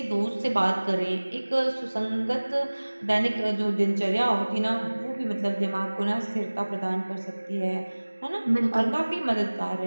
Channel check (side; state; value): both; inverted; correlation -1.00